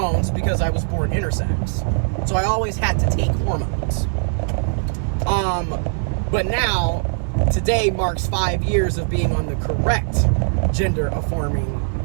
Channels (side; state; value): left; silent; digital silence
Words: because I was born intersex. So I always had to take hormones. But now, today marks 5 years of being on the correct gender